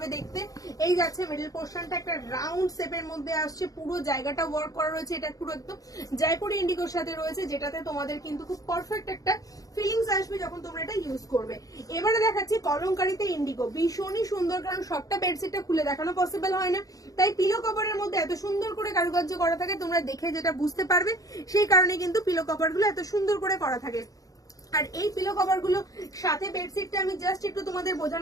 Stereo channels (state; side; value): late; right; 0.17 ms